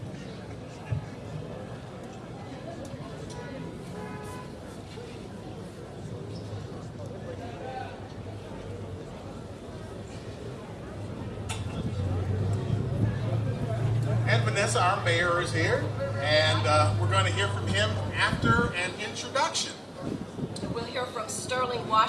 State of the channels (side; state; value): both; identical; correlation 1.00